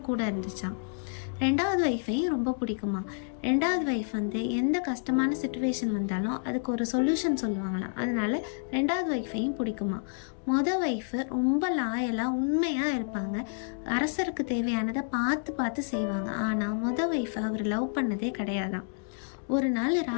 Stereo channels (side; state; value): right; silent; digital silence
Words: கூட இருந்துச்சான். 2வது ஒய்ஃபையும் ரொம்ப பிடிக்குமா. 2வது ஒய்ஃப் எந்த கஷ்டமான சுச்சுவேஷன் வந்தாலும் அதுக்கு ஒரு சொல்யூஷன் சொல்லுவாங்களாம். அதனால 2வது ஒய்ஃபையும் பிடிக்குமா. மொதல் ஒய்ஃபு ரொம்ப லாயலாக உண்மையாக இருப்பாங்க. அரசருக்கு தேவையானதை பார்த்து பார்த்து செய்வாங்க. ஆனால் மொதல் ஒய்ஃபை அவர் லவ் பண்ணதே கிடையாதான். ஒரு நாள்